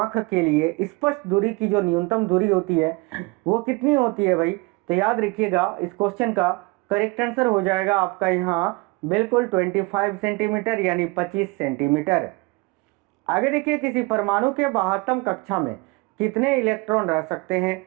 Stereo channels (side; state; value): left; quieter; 26.2 dB